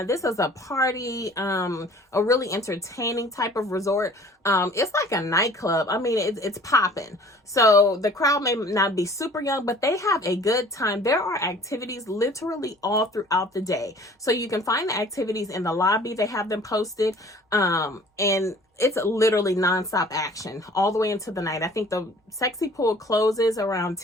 this is a party, a really entertaining type of resort. It's like a nightclub. I mean, it's popping. So the crowd may not be super young, but they have a good time. There are activities literally all throughout the day. So you can find the activities in the lobby. They have them posted. And it's literally nonstop action all the way into the night. I think the sexy pool closes around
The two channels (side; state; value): both; normal; correlation 0.50